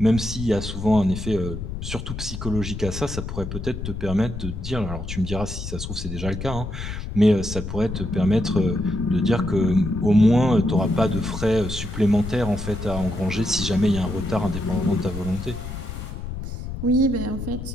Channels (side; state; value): left; noise; rumble, 7 dB below the sound